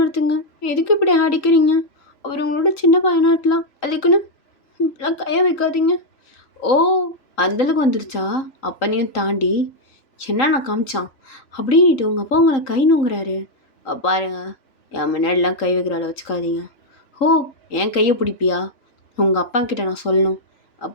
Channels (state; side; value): late; right; 3.8 ms